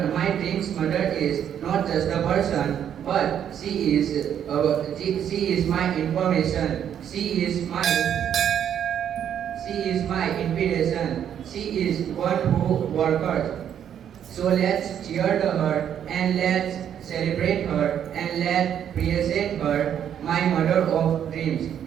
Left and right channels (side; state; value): left; quieter; 9.4 dB